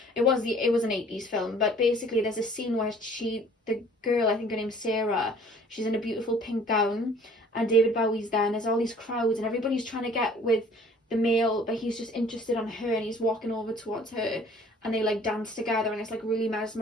it was an 80s film. But basically there's a scene where the girl, I think her name's Sarah, she's in a beautiful pink gown, and David Bowie's there, and there's all these crowds, and everybody's trying to get with the male, but he's just interested on her, and he's walking over towards her, and they like dance together, and it's like really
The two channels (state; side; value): normal; both; correlation 0.53